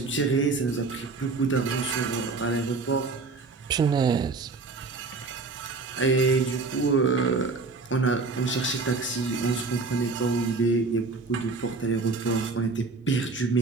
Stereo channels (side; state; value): left; quieter; 4.0 dB